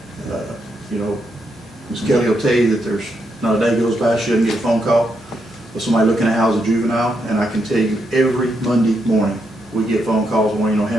you know, Ms. Kelly will tell you that there's not a day goes by she doesn't get a phone call of somebody looking to house a juvenile, and I can tell you every Monday morning, we get phone calls wanting to know how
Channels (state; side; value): normal; both; correlation 0.80